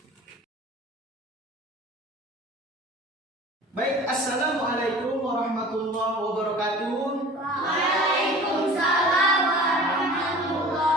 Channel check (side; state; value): both; normal; correlation 0.42